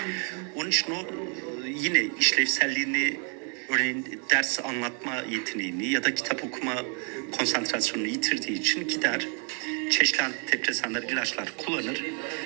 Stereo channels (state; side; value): quieter; left; 39.4 dB